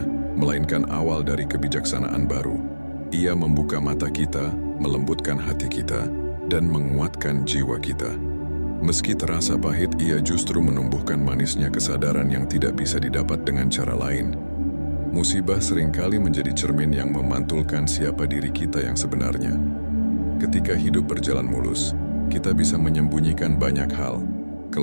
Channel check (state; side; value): inverted; both; correlation -1.00